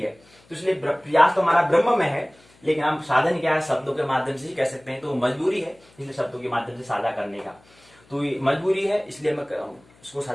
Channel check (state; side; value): noise; left; hum, 30 dB below the sound